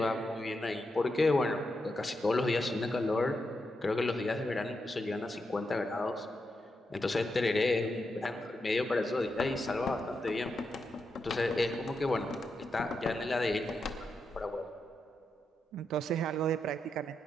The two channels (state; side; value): normal; both; correlation 0.85